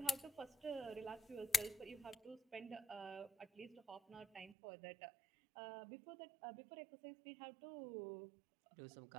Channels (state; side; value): drops out; left; at 4.5 s